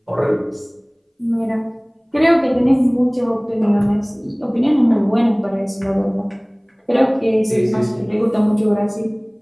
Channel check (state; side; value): identical; both; correlation 1.00